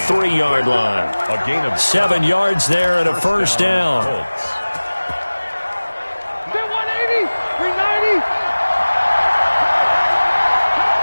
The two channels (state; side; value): inverted; both; correlation -1.00